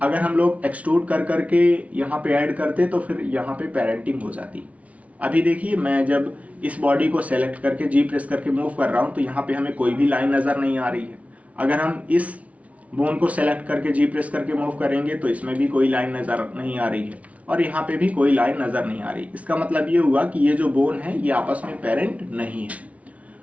अगर हम लोग एक्सट्रूड कर करके यहाँ पे ऐड करते तो फिर यहाँ पे पेरेंटिंग हो जाती। अभी देखिए मैं जब इस बॉडी को सेलेक्ट करके जी प्रेस करके मूव कर रहा हूँ तो यहाँ पे हमें कोई भी लाइन नज़र नहीं आ रही है। अगर हम इस बोन को सेलेक्ट करके जी प्रेस करके मूव करेंगे तो इसमें भी कोई लाइन नज़र नहीं आ रही है और यहाँ पे भी कोई लाइन नज़र नहीं आ रही। इसका मतलब ये हुआ कि ये जो बोन है ये आपस में पेरेंट नहीं है।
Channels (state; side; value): late; left; 0.066 ms